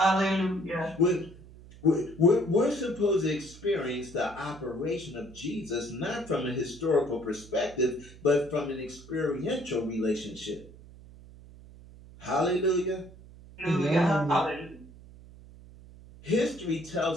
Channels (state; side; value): noise; right; hum, 19 dB below the sound